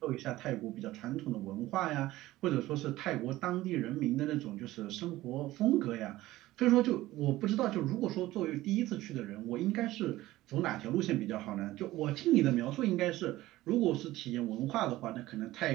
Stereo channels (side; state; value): left; quieter; 16.7 dB